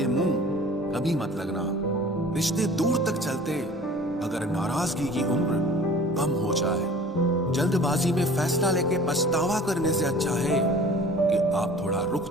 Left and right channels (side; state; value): both; normal; correlation 0.45